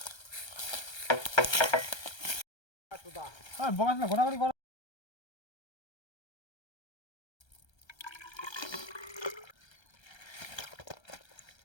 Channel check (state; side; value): late; right; 1.3 ms